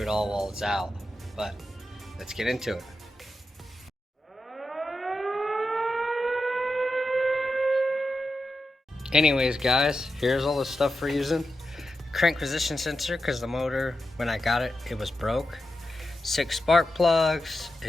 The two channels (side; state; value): both; normal; correlation 0.89